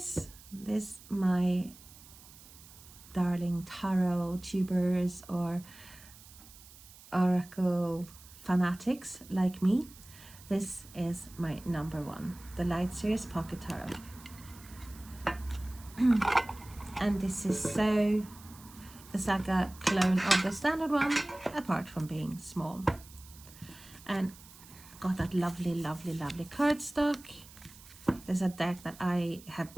my darling tarot tubers or oracle fanatics like me, this is my number one, the Lightseer Pocket Tarot. And this is so, it's like a clone of the standard one, apart from being small. And got that lovely, lovely, lovely cardstock. There's a deck that I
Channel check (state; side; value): noise; right; hiss, 20 dB below the sound